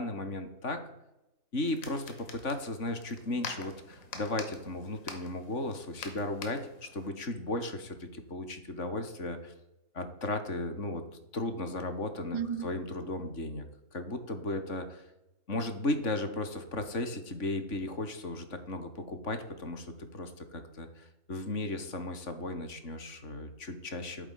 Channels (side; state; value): right; late; 3.5 ms